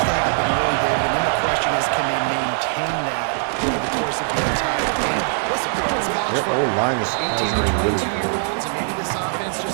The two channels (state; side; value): silent; left; 65 dB below the other